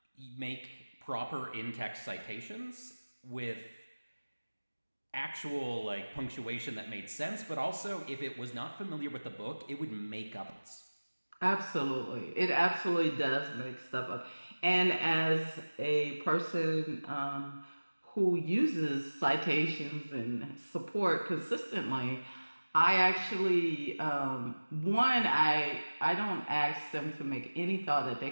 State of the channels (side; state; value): both; inverted; correlation -1.00